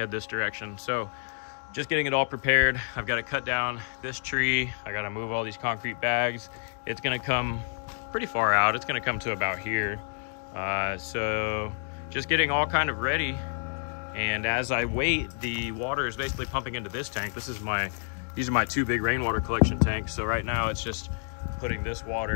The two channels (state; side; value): silent; right; digital silence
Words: this direction. So just getting it all prepared. I've got to cut down this tree. I got to move all these concrete bags. It's going to come pretty far out. It's going to come to about here. So just getting all kind of ready. And as I wait, the water is basically pumping into this tank. These are my two big rainwater collection tanks. So right now it's just putting this